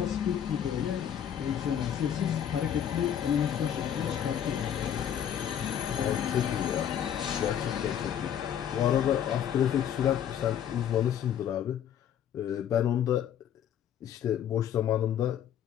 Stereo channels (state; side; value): quieter; right; 9.5 dB